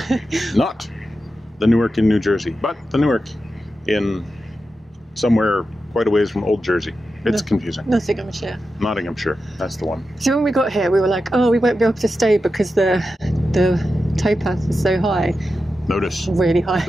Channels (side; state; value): both; normal; correlation 0.90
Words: not the Newark in New Jersey, but the Newark in somewhere quite a ways from Old Jersey. It's confusing. Nottinghamshire. Nottinghamshire. That's the one. So when we got here, we were like, oh, we won't be able to stay because the towpath is so high. Notice. Really high.